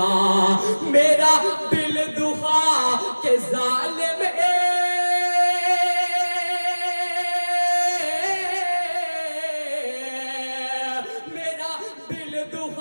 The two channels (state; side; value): inverted; both; correlation -1.00